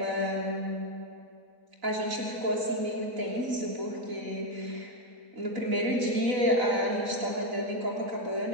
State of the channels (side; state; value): left; late; 3.9 ms